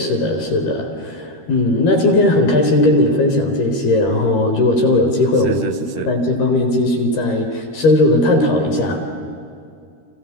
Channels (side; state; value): right; late; 13 ms